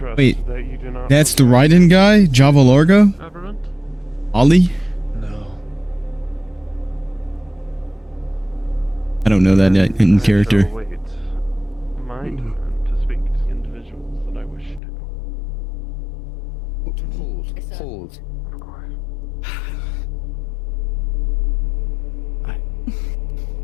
Wait, that you do not that's the Raiden guy? Java Largo? government. Ollie? I don't know that in character. Wait. My turn to speak to individuals that I wish to. Hold. Of course.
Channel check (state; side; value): drops out; right; at 14.8 s